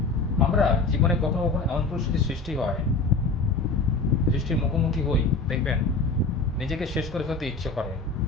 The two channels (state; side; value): quieter; right; 3.8 dB